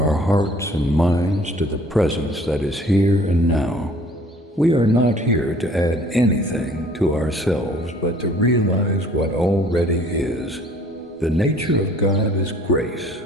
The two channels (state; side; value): normal; both; correlation 0.54